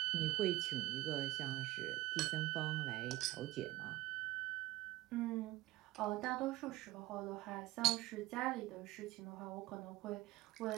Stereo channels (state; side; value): quieter; left; 17.8 dB